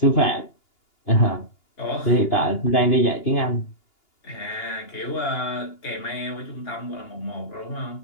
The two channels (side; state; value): right; late; 2.9 ms